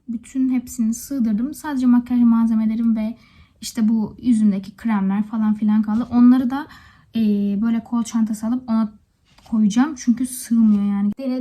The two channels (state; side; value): identical; both; correlation 1.00